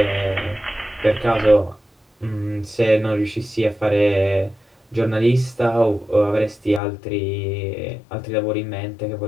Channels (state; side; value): drops out; right; at 6.8 s